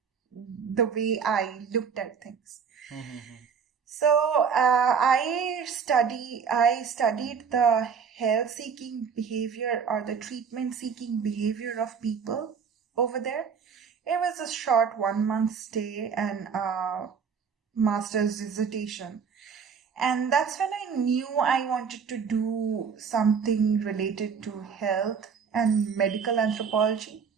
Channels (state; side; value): quieter; left; 6.3 dB